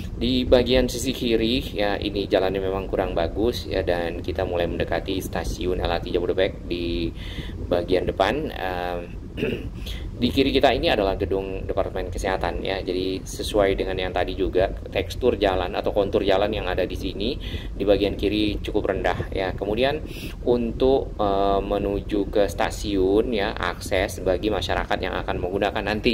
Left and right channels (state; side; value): identical; both; correlation 1.00